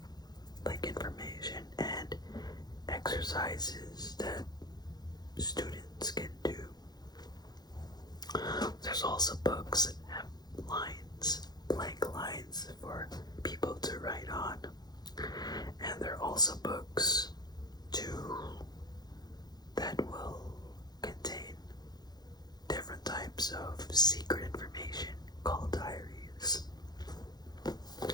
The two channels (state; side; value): late; right; 0.19 ms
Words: like information and exercises that students can do. There's also books that have lines, blank lines for people to write on. And there are also books that will contain different types of secret information called diaries.